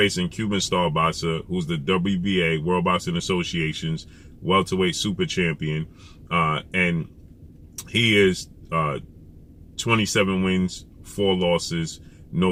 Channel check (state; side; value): identical; both; correlation 1.00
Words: Cuban star boxer, who's the WBA, World Boxing Association's welterweight super champion, and he is 27 wins, 4 losses,